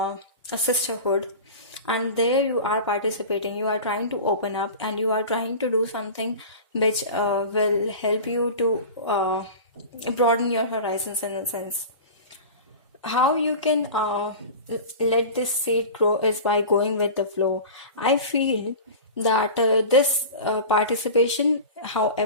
sisterhood. And there you are participating, you are trying to open up, and you are trying to do something which will help you to broaden your horizons in a sense. How you can let this seed grow is by going with the flow. I feel that this participation,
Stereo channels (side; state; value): both; inverted; correlation -0.33